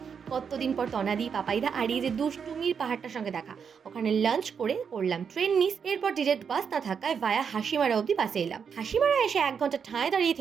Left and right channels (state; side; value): quieter; left; 6.7 dB